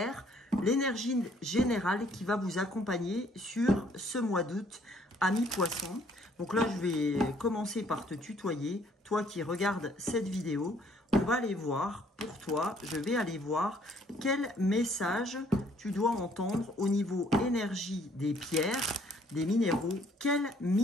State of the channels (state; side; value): normal; both; correlation 0.63